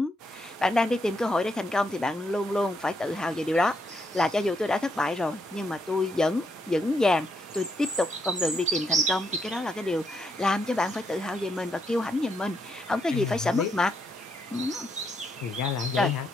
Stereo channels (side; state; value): both; normal; correlation 0.78